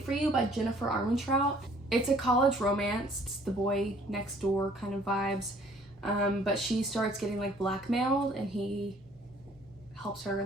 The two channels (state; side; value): normal; both; correlation 0.58